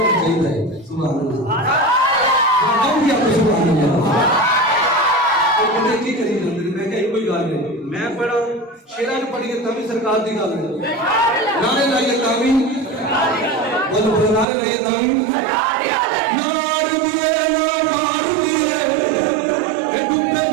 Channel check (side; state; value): left; drops out; at 14.5 s